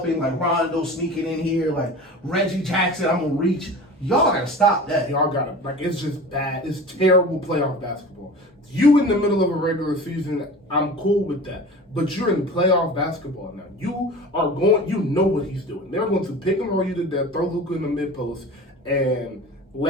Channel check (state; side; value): normal; both; correlation 0.36